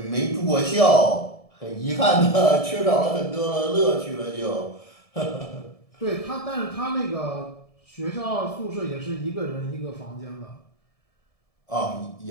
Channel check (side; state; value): right; late; 1.7 ms